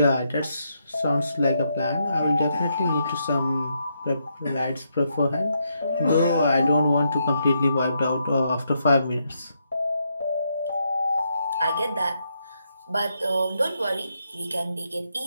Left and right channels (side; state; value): both; inverted; correlation -0.79